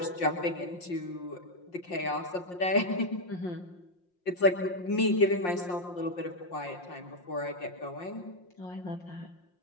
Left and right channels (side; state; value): right; late; 5.6 ms